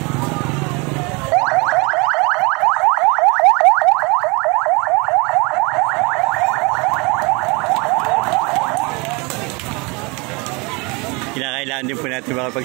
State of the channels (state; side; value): quieter; left; 28.4 dB